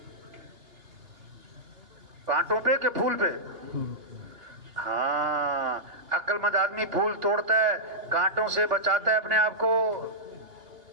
کانٹوں پہ کہ پھول پہ؟ ہاں، عقل مند آدمی پھول توڑتا ہے، کانٹوں سے بچاتا ہے اپنے آپ کو.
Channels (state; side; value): late; left; 2.9 ms